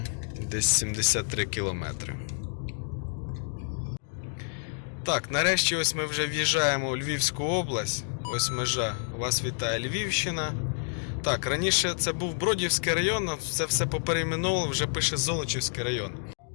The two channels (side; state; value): right; silent; 59 dB below the other